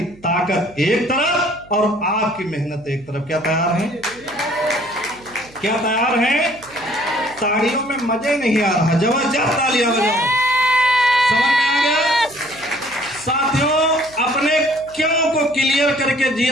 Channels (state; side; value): noise; right; hum, 25 dB below the sound